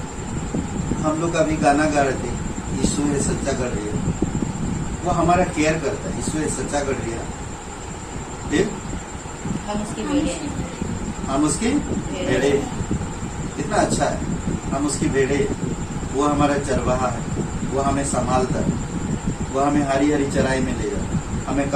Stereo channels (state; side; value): identical; both; correlation 1.00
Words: हम लोग अभी गाना गा रहे थे, यीशु है सच्चा गढ़िया। वो हमारा केयर करता है। यीशु है सच्चा गढ़िया, हम उसकी भेड़े हैं। हम उसकी भेड़े। कितना अच्छा है, हम उसकी भेड़े। वो हमारा चरवाहा है, वो हमें संभालता है, वो हमें हरी हरी चराई में ले जाता है, हमें